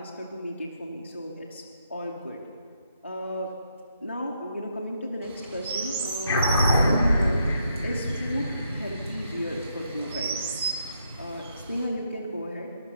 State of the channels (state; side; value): inverted; both; correlation -0.77